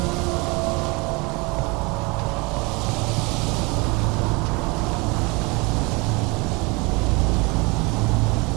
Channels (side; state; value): left; quieter; 27.0 dB